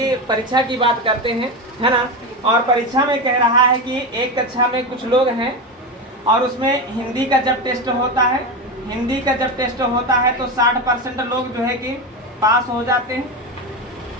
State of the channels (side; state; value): both; normal; correlation 0.17